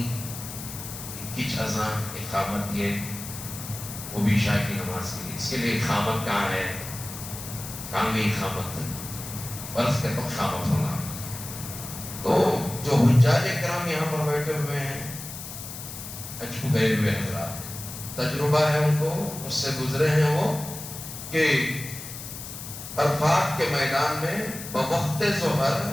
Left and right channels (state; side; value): noise; left; hiss, 10 dB below the sound